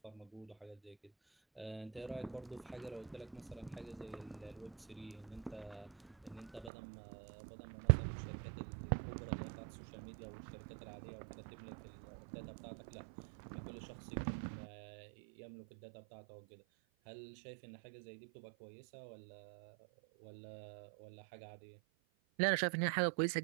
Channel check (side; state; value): left; drops out; at 6.7 s